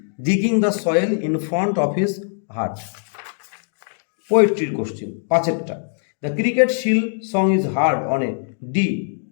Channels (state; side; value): silent; right; digital silence